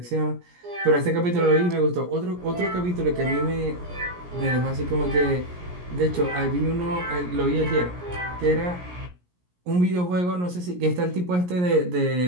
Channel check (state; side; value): late; left; 17 ms